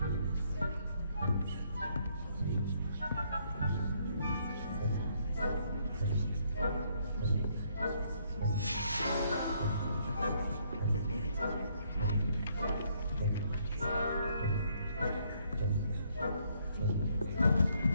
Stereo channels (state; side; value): inverted; both; correlation -0.70